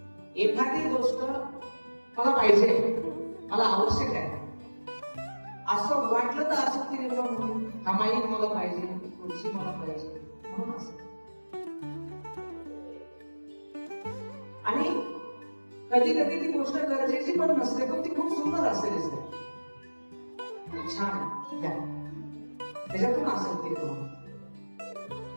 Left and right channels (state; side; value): inverted; both; correlation -1.00